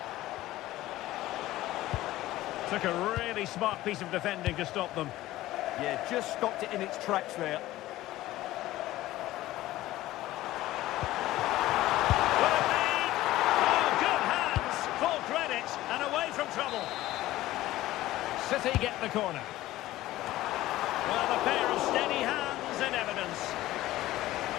Took a really smart piece of defending to stop them. Yeah, just stopped it in its tracks there. Will it be? Oh, good hands, full credit, and away from trouble. City get the corner. Well, a pair of steady hands in evidence.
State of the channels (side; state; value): right; quieter; 16.0 dB